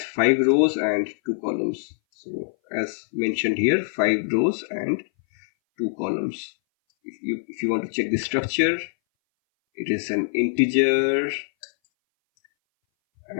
5 rows and 2 columns. So as mentioned here, 5 rows and 2 columns. If you want to check the structure, it is an integer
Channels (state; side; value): silent; right; 60 dB below the other